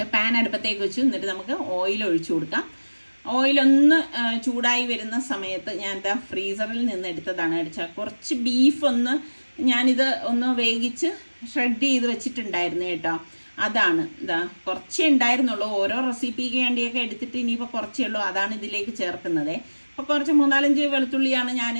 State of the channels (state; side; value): inverted; both; correlation -1.00